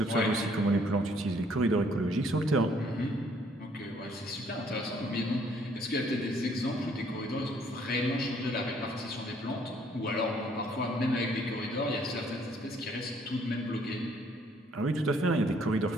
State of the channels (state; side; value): normal; both; correlation 0.64